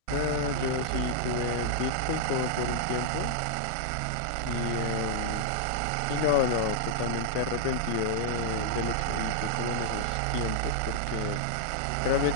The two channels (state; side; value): different; both; correlation -0.01